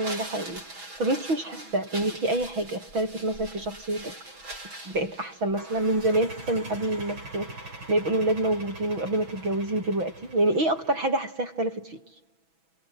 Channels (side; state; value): left; late; 6.1 ms